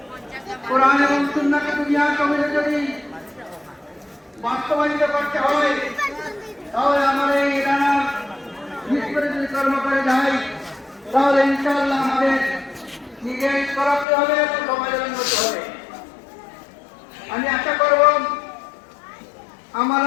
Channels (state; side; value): drops out; right; at 14.1 s